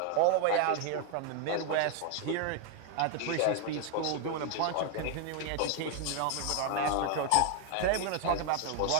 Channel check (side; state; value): both; different; correlation 0.01